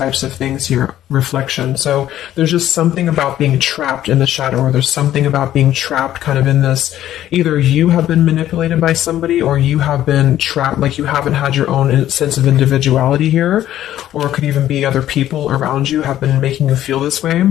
of things here, reflection. So there's just something about being trapped in the shadow, or there's something about being trapped kind of in this, either you have been manipulated by somebody, or you have been trapped, like you haven't had your own sense of individuality here, or it could even be other people around you have been making you feel this way.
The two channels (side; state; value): right; quieter; 12.5 dB